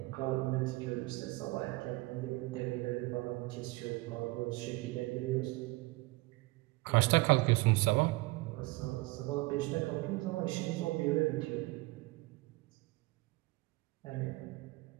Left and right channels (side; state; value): left; quieter; 22.3 dB